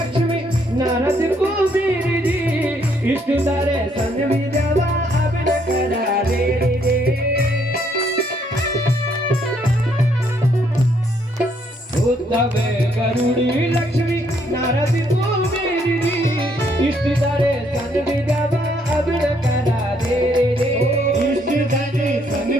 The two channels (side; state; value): both; normal; correlation 0.70